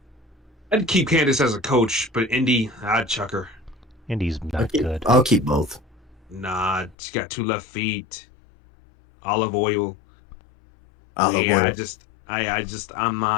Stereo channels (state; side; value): drops out; right; at 7.0 s